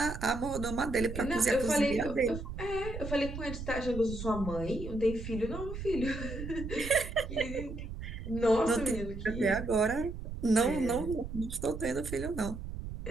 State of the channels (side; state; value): right; noise; rumble, 8 dB below the sound